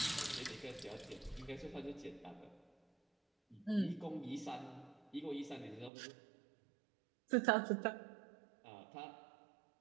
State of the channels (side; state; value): left; drops out; at 5.9 s